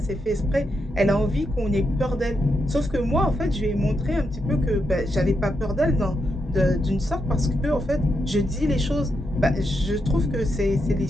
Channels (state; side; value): normal; both; correlation 0.83